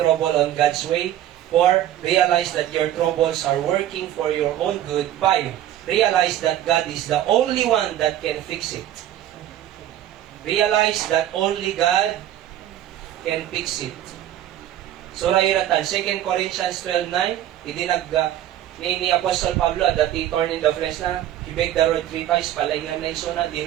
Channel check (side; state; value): left; quieter; 12.2 dB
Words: on God's way. 4, realize that your troubles are working for your own good. 5, realize that God is the only one that can fix it. Realize that only God can fix it. Sura iratan, 2 Corinthians 12:9, ni Apostle Pablo, that he torn in the flesh na, he begged the Lord 3 times, palay na mention na, di